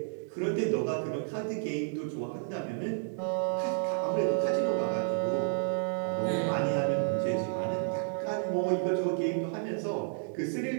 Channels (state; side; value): silent; left; digital silence